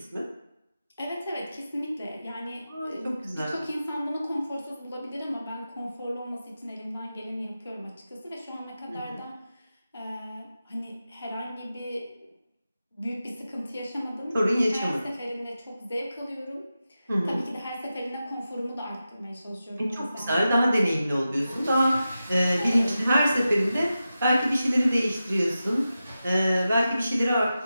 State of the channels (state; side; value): inverted; both; correlation -0.92